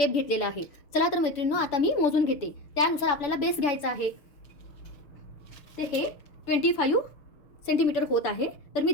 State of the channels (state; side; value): late; right; 6.9 ms